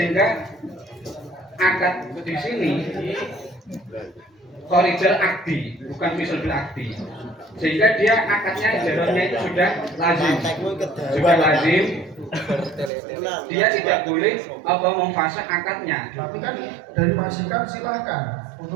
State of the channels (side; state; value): left; drops out; at 12.9 s